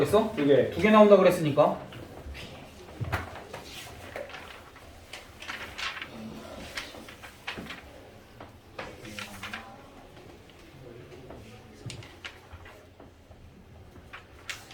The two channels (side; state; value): both; identical; correlation 1.00